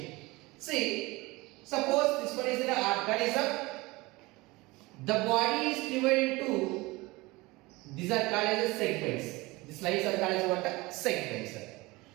See, suppose this one is an organism. The body is divided into, these are called as segments. These lines are called as what? Segments.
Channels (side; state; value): left; quieter; 22.3 dB